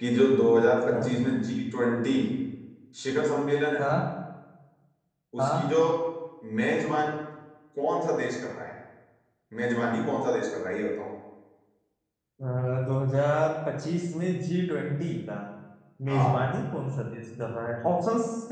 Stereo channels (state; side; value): identical; both; correlation 1.00